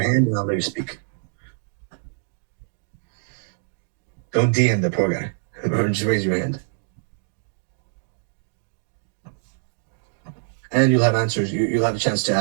hand and I'll let you speak. Don't DM the poor guy. Or just raise your hand. And you'll have answers. You'll have a chance to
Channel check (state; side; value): silent; left; digital silence